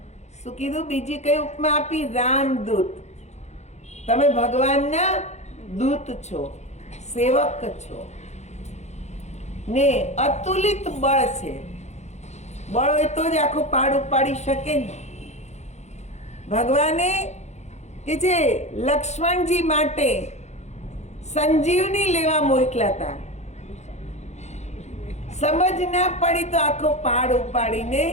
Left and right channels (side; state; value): right; late; 0.33 ms